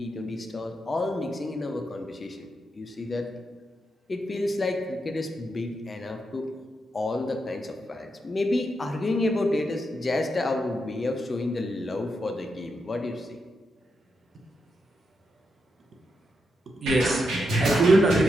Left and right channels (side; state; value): both; normal; correlation 0.84